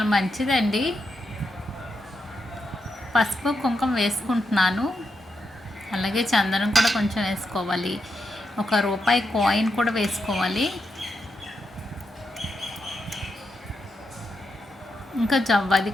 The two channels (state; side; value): normal; both; correlation 0.84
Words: మంచిదండి. పసుపు కుంకుమ వేసుకుంటున్నాను. అలాగే చందనం కూడా కొంచెం వేసుకోవాలి. ₹1 కాయిన్ కూడా వేసుకోవాలి. ఇంకా జవ్వాది